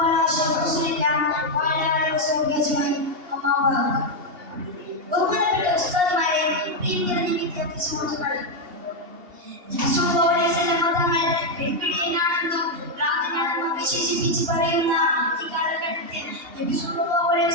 على أشرف رسول الله وعلى آله وصحبه أجمعين. أما بعد. ബഹുമാനപ്പെട്ട ഉസ്താദുമാരെ, പ്രിയങ്കരഞ്ഞ വിദ്യാർത്ഥി സുഹൃത്തുക്കളെ, തങ്ങൾ പെൺപിടിയനാണെന്നും ഭ്രാന്തനാണെന്നും വിശേഷിപ്പിച്ച് പറയുന്ന ഈ കാലഘട്ടത്തിൽ നബി സല്ലല്ലാഹു അലൈഹി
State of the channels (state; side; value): late; left; 2.8 ms